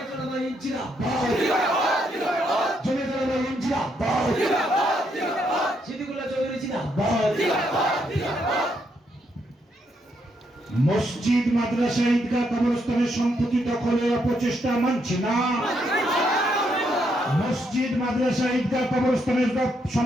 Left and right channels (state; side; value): normal; both; correlation 0.76